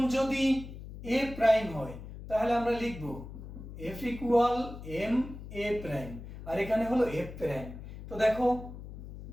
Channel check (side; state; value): left; noise; hum, 12 dB below the sound